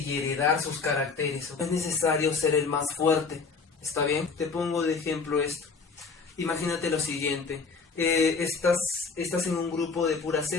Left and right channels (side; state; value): right; quieter; 4.8 dB